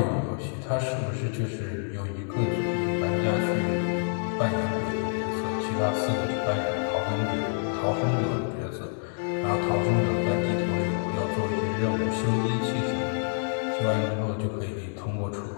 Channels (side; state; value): right; silent; digital silence